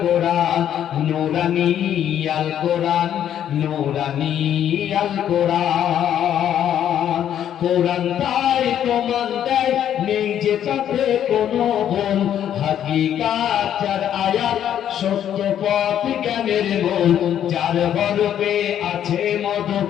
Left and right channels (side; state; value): right; quieter; 10.2 dB